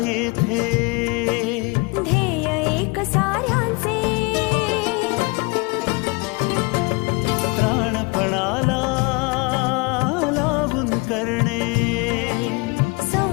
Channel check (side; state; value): right; quieter; 27.7 dB